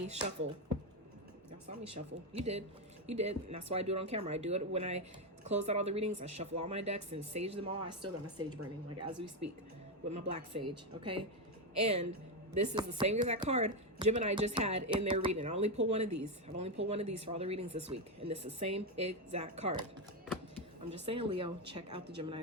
shuffle. Y'all saw me shuffle. You did. You did. And that's why I do it on camera. I do it when I close out all the readings. I shuffle all my decks and sage them all. I still got my sage burning, like as we speak, with my black sage. Okay. And this is the same exact card Gemini just had in their reading. I only pulled one of these. I've only pulled one of these for all the readings this week. And this is the same exact card. I'm just saying, Leo, check out the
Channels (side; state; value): both; normal; correlation 0.07